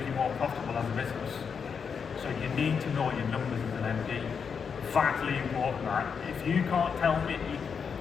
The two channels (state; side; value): quieter; right; 6.3 dB